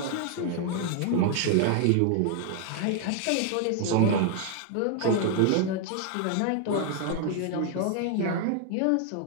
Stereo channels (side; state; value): both; different; correlation 0.00